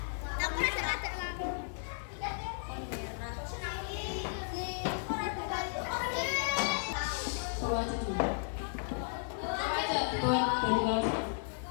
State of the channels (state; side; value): silent; right; digital silence